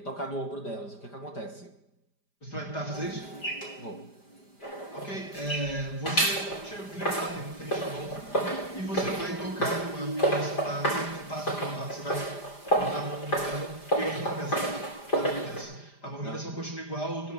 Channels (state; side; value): late; right; 5.0 ms